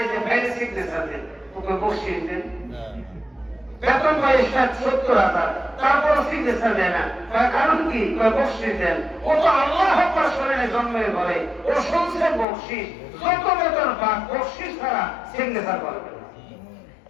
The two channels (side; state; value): right; drops out; at 12.5 s